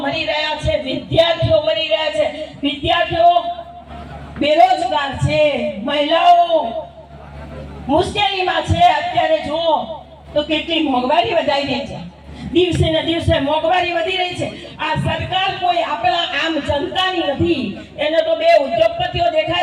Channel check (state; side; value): identical; both; correlation 1.00